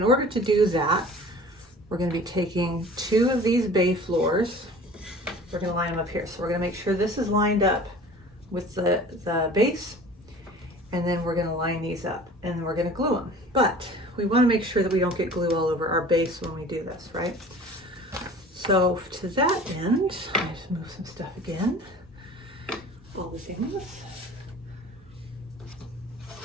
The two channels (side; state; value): both; normal; correlation 0.44